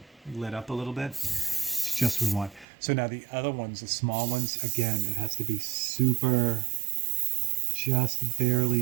lit up a little bit. It's just what we want. So now the other ones, the small ones, again, it has to be super, just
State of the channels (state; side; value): drops out; left; at 2.7 s